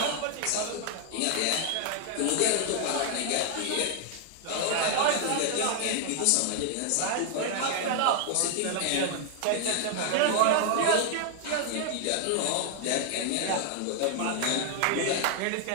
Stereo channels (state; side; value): different; both; correlation 0.00